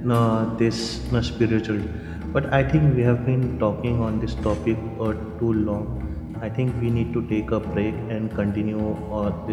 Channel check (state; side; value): identical; both; correlation 1.00